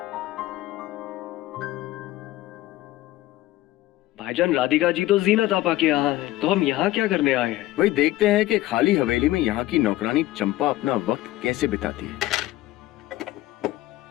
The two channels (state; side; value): quieter; right; 16.2 dB